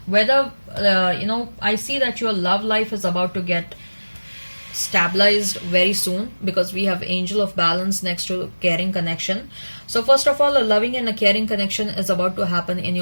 Whether I see that your love life is about to get stabilized very soon, because we have Angel of Balance next to Caring Connection. So first of all, a loving and a caring connection is about to happen in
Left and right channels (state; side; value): inverted; both; correlation -1.00